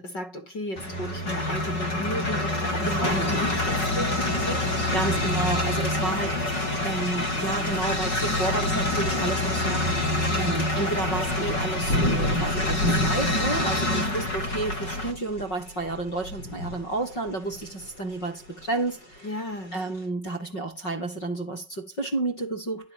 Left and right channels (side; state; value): right; late; 5.4 ms